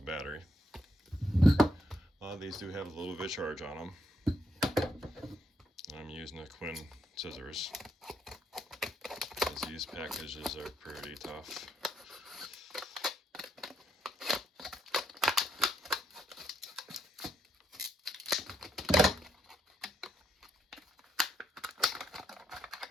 battery. A lot of these do have a little bit of charge on them. I'm using the Quinn scissors, because these packages are pretty tough.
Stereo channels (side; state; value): both; normal; correlation 0.75